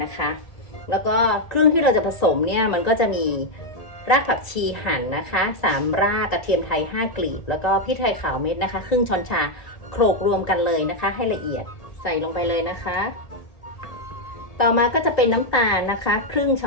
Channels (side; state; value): right; late; 1.8 ms